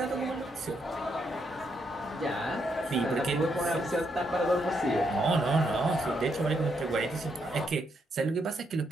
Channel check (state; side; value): normal; both; correlation 0.78